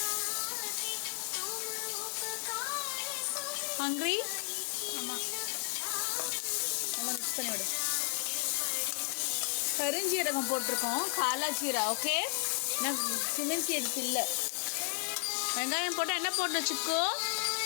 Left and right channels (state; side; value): silent; right; 55 dB below the other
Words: ஹங்க்ரி? ஆமாம், நல்லா மிக்ஸ் பண்ணி விடு. கருஞ்சீரகம் போட்டிருக்கோம், காலா ஜீரா. ஓகே, நான் கியூமின் சீட்ஸ் இல்லை. வெங்காயம் போட்டால் என்ன போடணும் சிக்கோ?